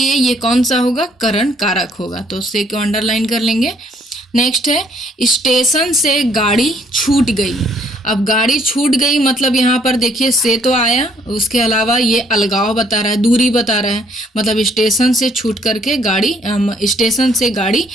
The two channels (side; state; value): both; normal; correlation 0.65